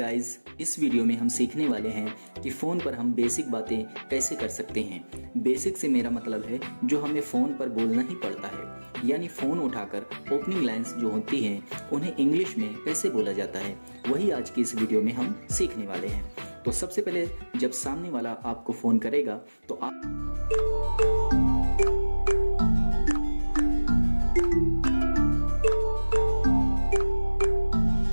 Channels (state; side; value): inverted; both; correlation -1.00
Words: इस वीडियो में हम सीखने वाले हैं कि फ़ोन पर हम बेसिक बातें कैसे कर सकते हैं। बेसिक से मेरा मतलब है जो हमें फ़ोन पर बोलना ही पड़ता है, यानी फ़ोन उठाकर ओपनिंग लाइंस जो होती हैं उन्हें इंग्लिश में कैसे बोला जाता है, वही आज की इस वीडियो में हम सीखने वाले हैं। तो सबसे पहले जब सामने वाला आपको फ़ोन करेगा तो आप